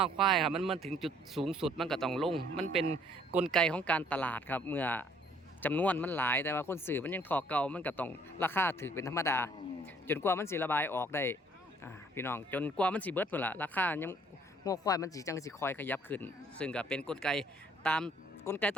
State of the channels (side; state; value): both; normal; correlation 0.61